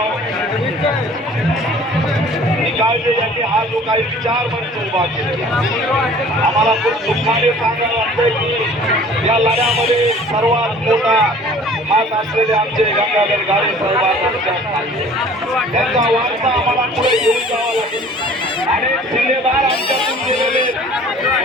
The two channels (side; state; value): both; normal; correlation 0.49